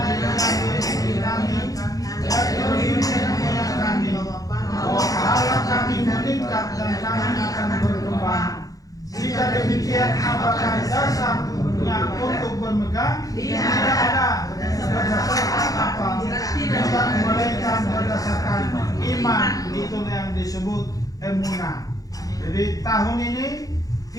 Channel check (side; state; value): right; late; 0.17 ms